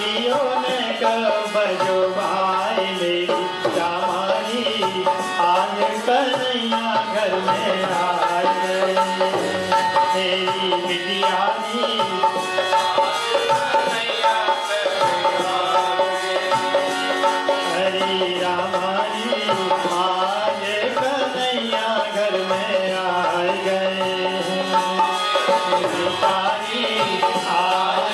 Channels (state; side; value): identical; both; correlation 1.00